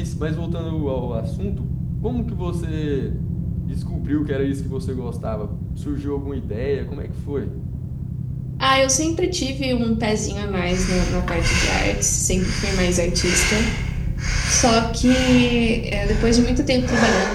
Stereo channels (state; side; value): identical; both; correlation 1.00